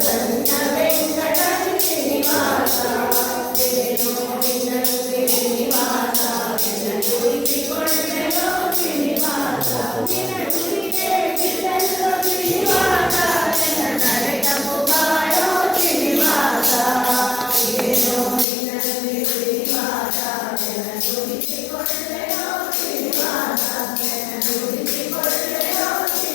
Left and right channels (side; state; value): right; drops out; at 18.4 s